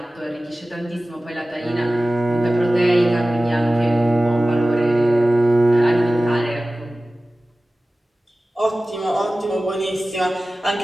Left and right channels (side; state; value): both; normal; correlation 0.96